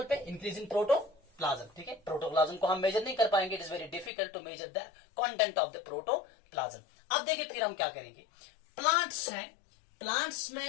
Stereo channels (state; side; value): drops out; right; at 4.1 s